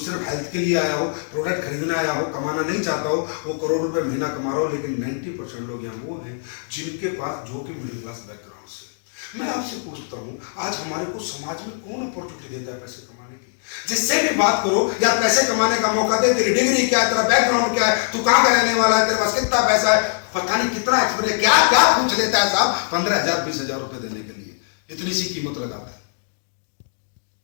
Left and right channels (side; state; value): right; silent; digital silence